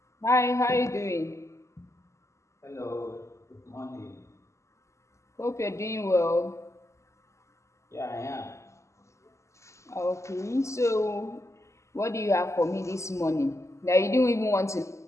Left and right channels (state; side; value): late; right; 0.14 ms